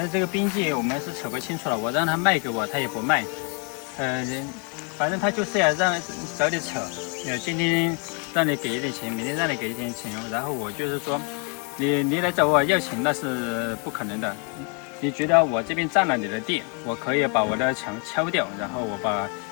这个边界我们是扯不清楚了，我让他卖给我，他也不卖。反正他就是要找你扯，今天让你给一点钱，明天让你给一点钱，然后我就是说，你来找我要钱那是不可能的。你觉得我这边占了你的地，我可以把我的墙敲掉，然后我把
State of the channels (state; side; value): quieter; right; 36.2 dB